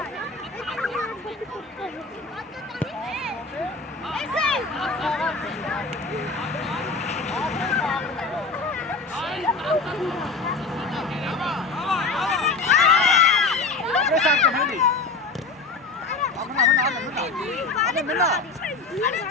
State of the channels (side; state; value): right; quieter; 4.0 dB